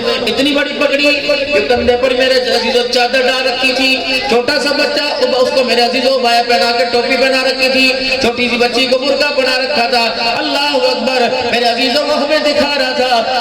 اتنی بڑی پگڑی کہ کندھے پر میرے عزیزو چادر ڈال رکھی تھی، چھوٹا سا بچہ اس کو میرے عزیزو بایا پہنا کے ٹوپی پہنا رکھی تھی، چھوٹی سی بچی کو برقع بنا رکھا تھا۔ اللہ اکبر، میرے عزیزو وہ ہمیں دکھا رہا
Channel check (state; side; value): identical; both; correlation 1.00